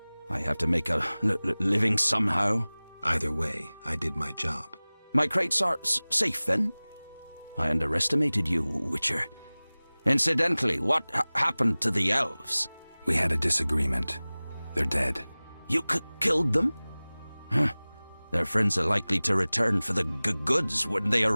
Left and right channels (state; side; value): inverted; both; correlation -0.99